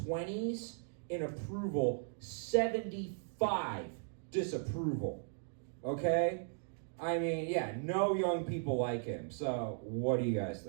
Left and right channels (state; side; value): silent; left; digital silence